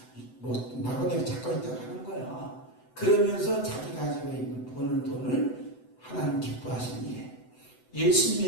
뭐 나그네를 찾고 있다고 하는 거야. 그러면서 자기 가지고 있는 버는 돈을 하나님 기뻐하시는 일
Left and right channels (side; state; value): right; late; 7.9 ms